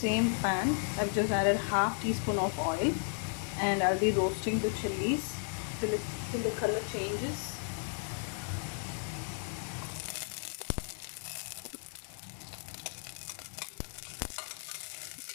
pan, I've just added half teaspoon of oil, and I'll be roasting the chillies till the color changes.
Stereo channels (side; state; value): right; silent; 55 dB below the other